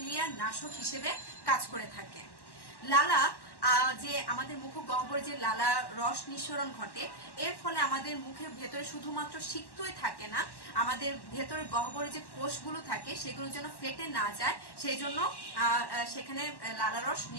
নাশক হিসেবে কাজ করে থাকে। লালা যে আমাদের মুখগহ্বরে যে লালা রস নিঃসরণ ঘটে, এর ফলে আমাদের মুখের ভেতরে শুধুমাত্র সিক্তই থাকে না, আমাদের ভেতরে গহ্বরে যে কোষগুলো থাকে সেগুলো যেন ফেটে না যায়, সেই জন্য সেখানে লালা রস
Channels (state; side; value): late; right; 1.1 ms